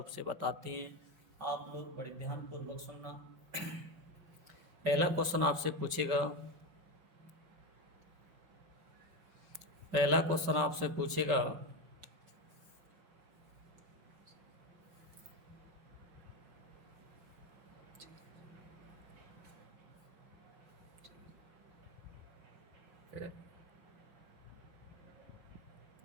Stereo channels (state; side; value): late; left; 5.2 ms